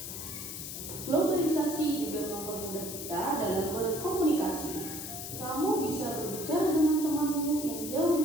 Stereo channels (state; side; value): noise; left; hiss, 7 dB below the sound